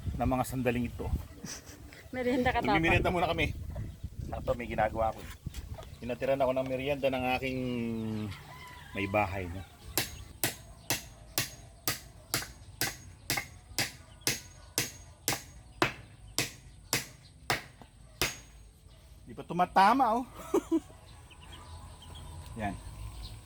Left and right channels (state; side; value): identical; both; correlation 1.00